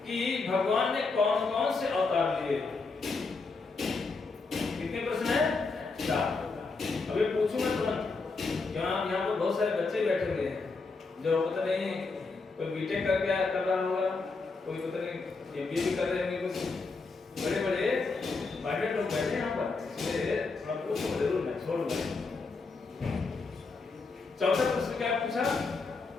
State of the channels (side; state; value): right; quieter; 4.1 dB